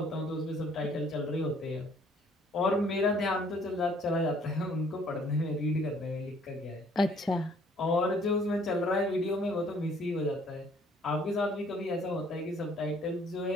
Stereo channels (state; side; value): normal; both; correlation 0.60